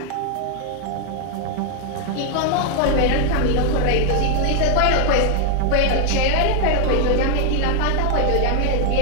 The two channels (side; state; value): both; different; correlation 0.00